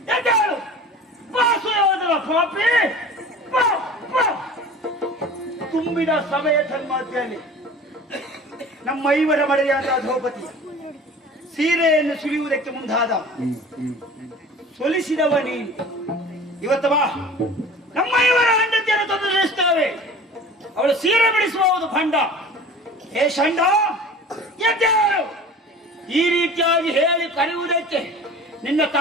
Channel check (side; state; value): both; normal; correlation 0.41